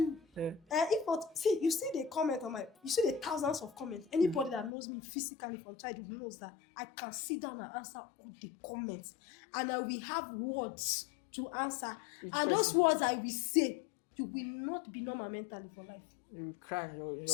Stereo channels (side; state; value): right; drops out; at 4.7 s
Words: Yeah. If not, see, you see the comment on you see the thousands of comments. Anybody that knows me physically from childhood knows that I can sit down and answer all the comments, and I will have words to answer. Those words I will say, you will not be normal mentally for life. You will cry.